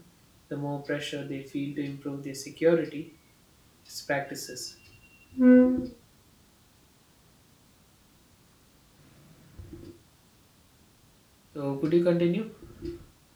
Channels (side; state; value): both; identical; correlation 1.00